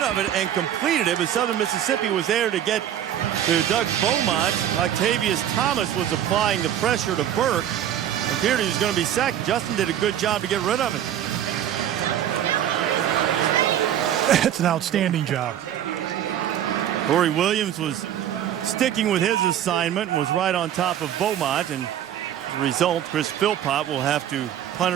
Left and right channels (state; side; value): quieter; left; 10.7 dB